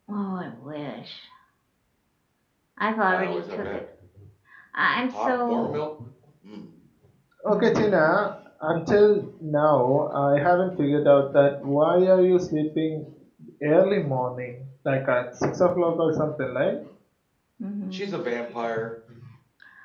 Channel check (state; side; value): identical; both; correlation 1.00